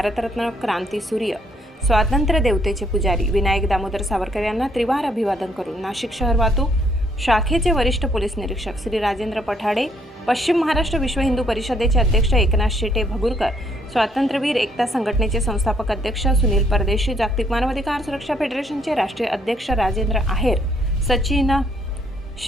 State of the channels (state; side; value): normal; both; correlation 0.69